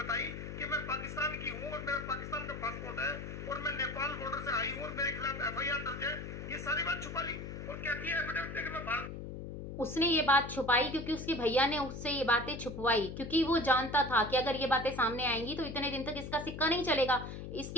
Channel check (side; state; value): left; noise; hum, 8 dB below the sound